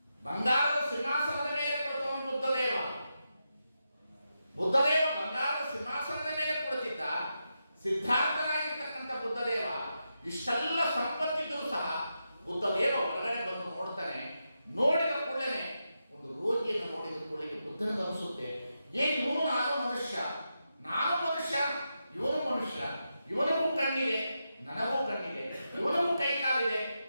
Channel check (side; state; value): both; inverted; correlation -0.87